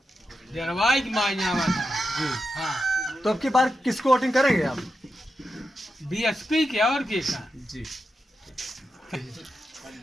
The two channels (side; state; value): both; normal; correlation 0.88